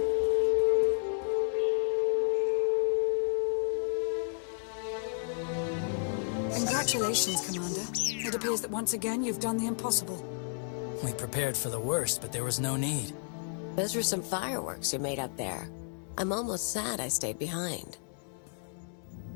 Congratulations, Commander. It appears that once again you've done the impossible. We prepared for the worst, but there was no need. Those were some fireworks you made up there. I'm almost sad I stayed behind.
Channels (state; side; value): silent; right; 56 dB below the other